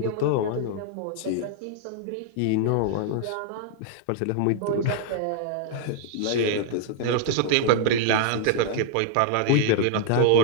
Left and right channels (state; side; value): different; both; correlation -0.01